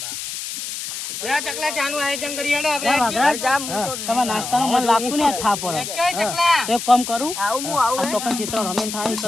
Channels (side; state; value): left; noise; hiss, 6 dB below the sound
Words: ચકલા ચાનું આયોજન કરી હેડો તમારા નાસ્તાનો મને લાગતું ને થા પડે તો એક કામ કરું આવું તો પણ ક્ષેત્ર રમેન થાય તો